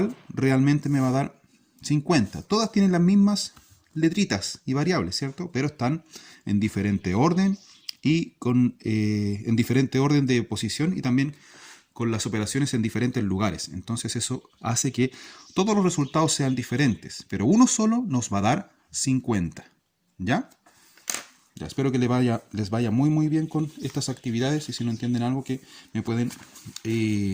realmente me va a dar 50. Todas tienen las mismas letritas y variables, ¿cierto? Pero están en diferente orden y en diferente orden de posición y también con las operaciones en diferentes lugares. Entonces eso hace que todos los resultados sean diferentes, pero uno solo nos va a dar 50. ¿Ya? Ya, espero que les vaya muy bien con estas actividades y si no entienden algo que me pueden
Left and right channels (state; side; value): identical; both; correlation 1.00